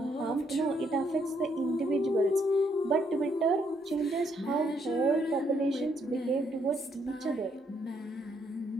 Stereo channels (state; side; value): normal; both; correlation 0.72